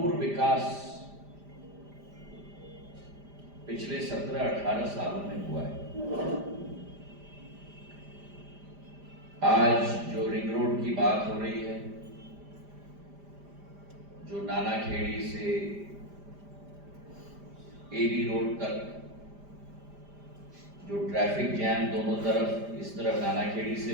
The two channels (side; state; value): left; late; 5.0 ms